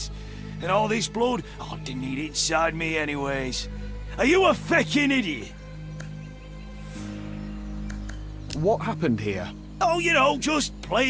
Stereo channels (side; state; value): both; identical; correlation 1.00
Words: And all this blood, I didn't need it inside me anyways. Are you a feckin' idiot? What happened here? Oh, you know, just